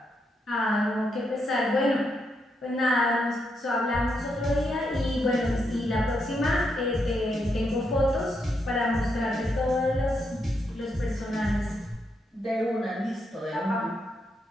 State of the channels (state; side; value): normal; both; correlation 0.80